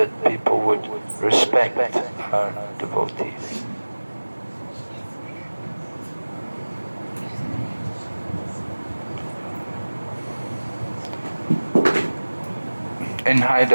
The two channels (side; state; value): both; inverted; correlation -1.00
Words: people would respect our devotees. In